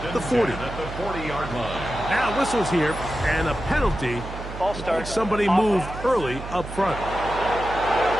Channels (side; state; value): right; noise; hum, 10 dB below the sound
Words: the 40. Now whistles here and a penalty. Somebody moved early up front.